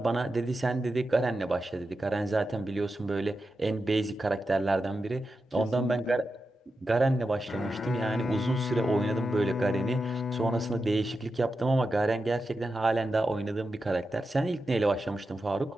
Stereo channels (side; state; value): both; normal; correlation 0.90